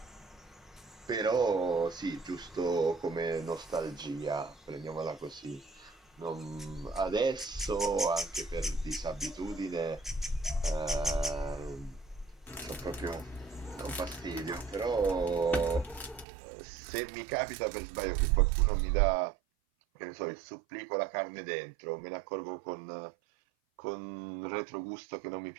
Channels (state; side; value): drops out; left; at 16.2 s